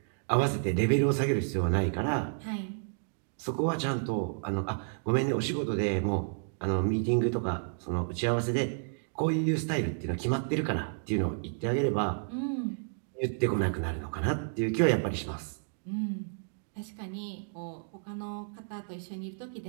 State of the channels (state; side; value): silent; left; digital silence